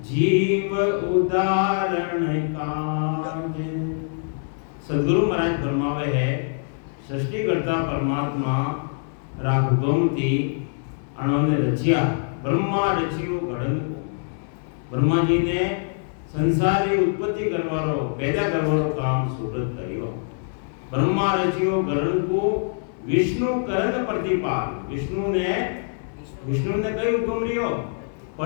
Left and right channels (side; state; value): right; silent; 61 dB below the other